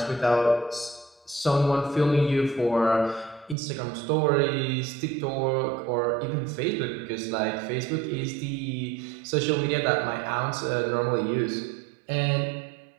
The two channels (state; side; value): drops out; left; at 3.6 s